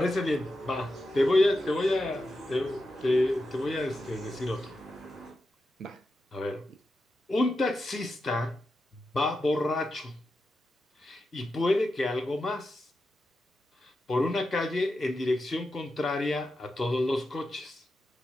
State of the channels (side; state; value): both; normal; correlation 0.89